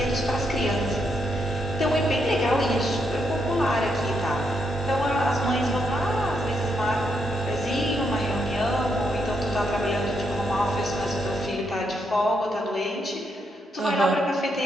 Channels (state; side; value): normal; both; correlation 0.79